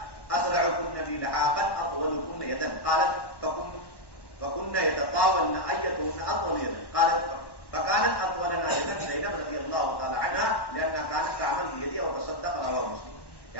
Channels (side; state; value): right; late; 1.1 ms